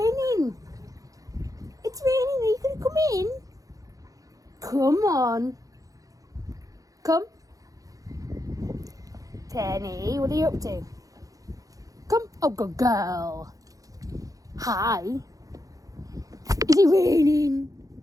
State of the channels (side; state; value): left; late; 0.17 ms